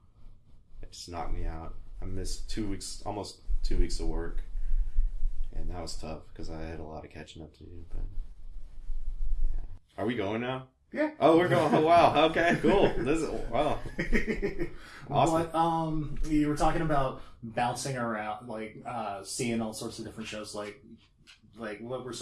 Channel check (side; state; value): both; identical; correlation 1.00